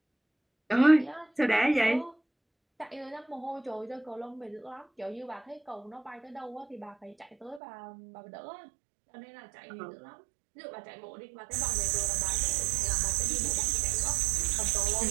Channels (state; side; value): drops out; left; at 7.6 s